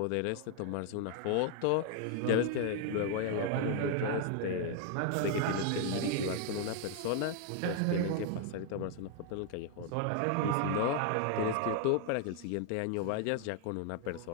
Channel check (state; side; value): different; both; correlation 0.00